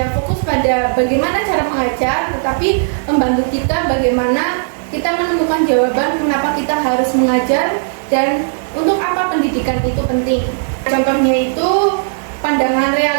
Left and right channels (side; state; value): left; silent; digital silence